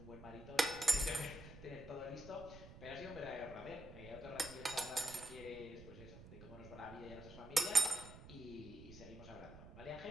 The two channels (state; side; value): noise; right; rumble, 15 dB below the sound